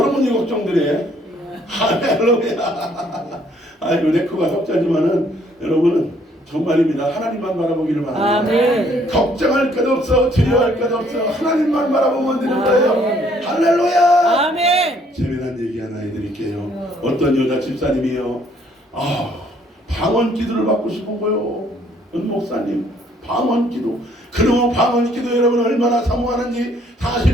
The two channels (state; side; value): normal; both; correlation 0.64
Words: 걱정들이 할렐루야. 아이고 레코가 석자지만은 여러분은 정말입니다. 하나님만 바라보기를 바랍니다. 아멘. 걱정할 것 없어, 두려워할 것 없어. 하나님만 바라보면 되는 거예요. 할렐루야. 아멘. 재미난 얘기 하나 해드릴게요. 어떤 여자 집사님이요. 방언 기도를 받고 싶은 거요. 은 목사님 방언 기도. 그러면 방언 기도 여러분 얼마나 사모하는지